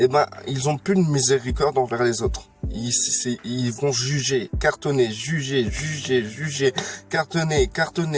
ben, ils ont plus de miséricorde envers les autres. Ils vont juger, cartonner, juger, cartonner,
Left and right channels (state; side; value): identical; both; correlation 1.00